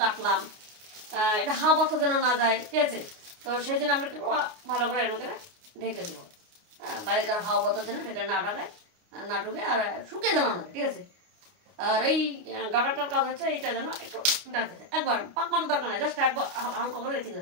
এটা হাওয়া বাতাস যেন না যায়, ঠিক আছে। তো সেই জন্য আমরা একটু ভালো করে এর মধ্যে ঢেকে দেবো, বাইরেকার হাওয়া বাতাস যেন ভেতরে না ঢাকায়, না ঢুকে, আর শুকিয়ে যেন না, ঠিক আছে। আর এই গাটারটার কাজ হচ্ছে এইটা যেন একটু ডাকে যায়, একবার পাক মারার দরকার নাই, জাস্ট একবার হালকা করে রেখে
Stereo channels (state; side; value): late; left; 29 ms